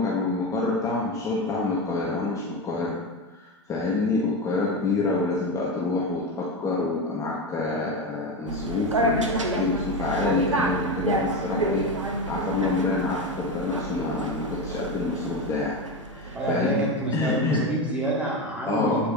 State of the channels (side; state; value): both; normal; correlation 0.17